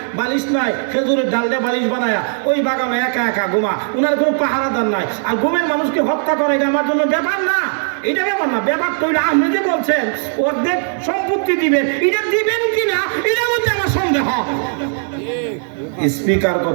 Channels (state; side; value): silent; left; 63 dB below the other